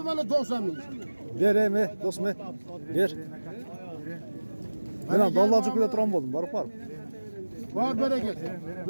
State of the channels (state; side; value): inverted; both; correlation -1.00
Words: bana 90 milyon. Bereme, do'stmi? Ber. Men ham dollarchi kuyda turan bo'ldim, borib borib. Var bereket.